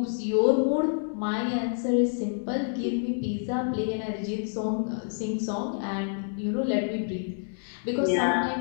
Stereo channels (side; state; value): right; silent; digital silence